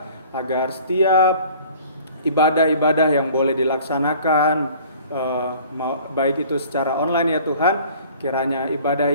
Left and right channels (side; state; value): both; inverted; correlation -0.49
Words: agar setiap ibadah-ibadah yang boleh dilaksanakan, baik itu secara online ya Tuhan, kiranya